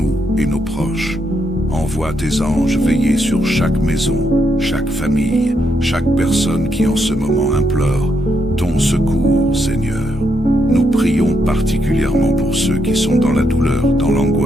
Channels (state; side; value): normal; both; correlation 0.78